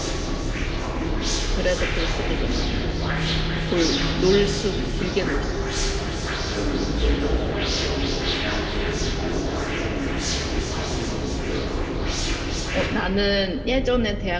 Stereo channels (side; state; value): both; identical; correlation 1.00